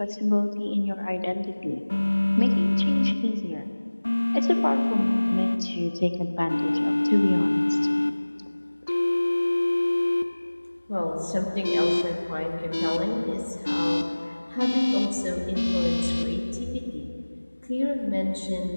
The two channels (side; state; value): both; inverted; correlation -1.00